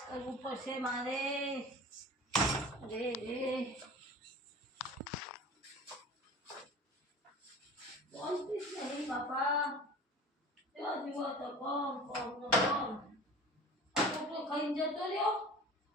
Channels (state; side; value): normal; both; correlation 0.39